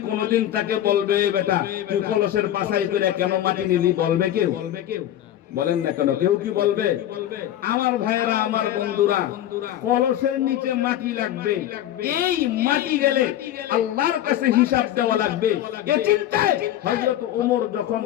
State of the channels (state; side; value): quieter; right; 12.2 dB